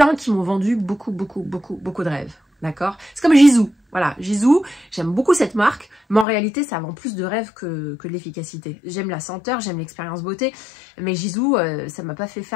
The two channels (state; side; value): drops out; right; at 6.2 s